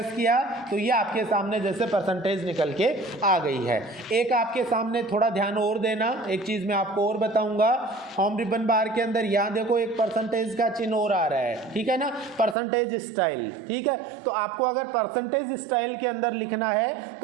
किया, तो ये आपके सामने जैसे परसेंटेज निकल के आ गई है। एक आपके सामने थोड़ा ध्यान और देना, एक चीज़ मैं आपको और बताऊंगा। होम रिबन बार के अंदर यहाँ देखो एक परसेंटेज का चिन्ह और आ रहा है, ठीक है ना, परसेंटेज स्टाइल, ठीक है। तो आपको अगर परसेंटेज स्टाइल के अंदर लिखना है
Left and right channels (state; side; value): drops out; left; at 12.6 s